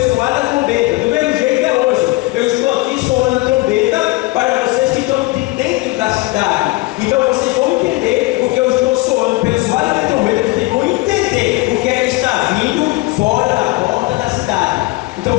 soar da trombeta. Do mesmo jeito é hoje. Eu estou aqui soando a trombeta para vocês que estão de dentro da cidade. Então, vocês vão entender porque eu estou soando pelo soar da trombeta. Vocês vão entender o que é que está vindo fora da porta da cidade. Então,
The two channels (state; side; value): quieter; right; 22.0 dB